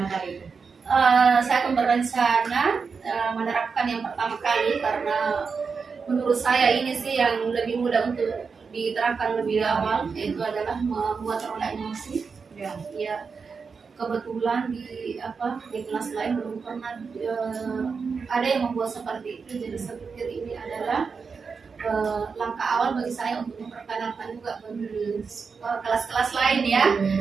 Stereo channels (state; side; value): quieter; left; 5.3 dB